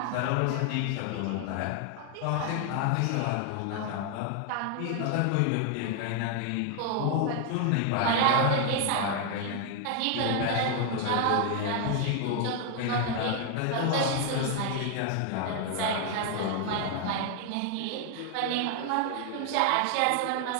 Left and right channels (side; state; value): both; different; correlation 0.00